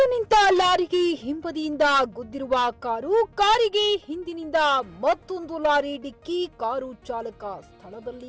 ನಿಂತ ಲಾರಿಗೆ ಹಿಂಬದಿಯಿಂದ ಗುದ್ದಿರುವ ಕಾರಿಗೆ ಹಿಂದಿನಿಂದ ಮತ್ತೊಂದು ಲಾರಿ ಡಿಕ್ಕಿ ಕಾರು ಚಾಲಕ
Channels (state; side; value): identical; both; correlation 1.00